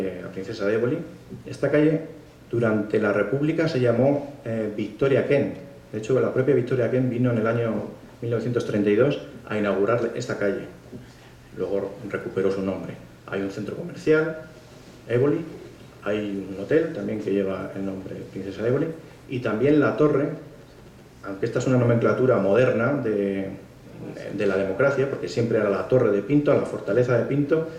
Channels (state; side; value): identical; both; correlation 1.00